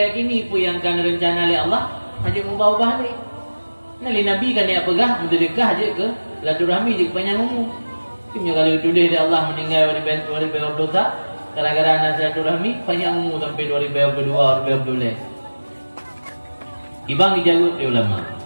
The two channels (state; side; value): inverted; both; correlation -1.00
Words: apa yang kan rencana oleh Allah hanya ubah-ubah ni. Nali Nabi kan dia pegah bersedekah je ke silaturahmi je ke panjangmu. Timnya kalau tulis dia Allah meninggal 2020 gara-gara nak silaturahmi panjangmu sampai 2022 2012. Ibang dijawab di ulama.